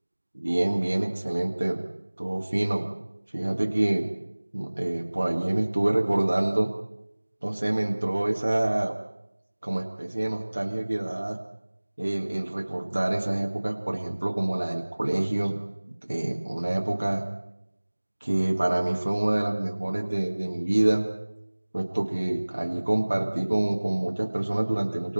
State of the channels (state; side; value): inverted; both; correlation -1.00